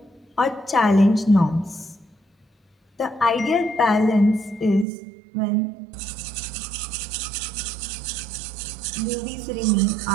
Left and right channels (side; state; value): left; drops out; at 4.9 s